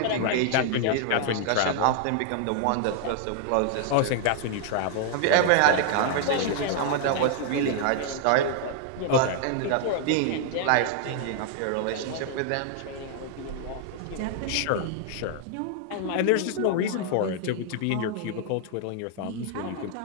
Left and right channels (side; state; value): both; different; correlation 0.00